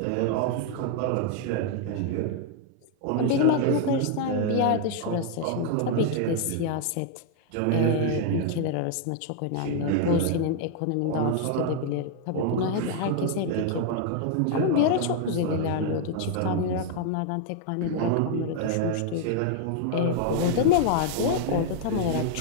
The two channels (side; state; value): both; different; correlation 0.00